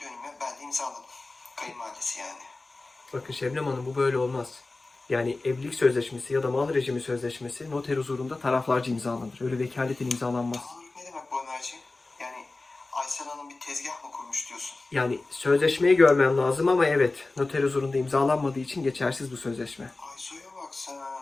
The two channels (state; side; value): quieter; right; 3.3 dB